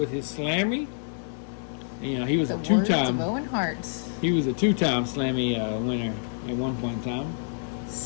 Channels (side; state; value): right; silent; digital silence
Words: his Slammy. He was a two-time. Owen Hart's. He was a two-time Slammy winner at one point in time.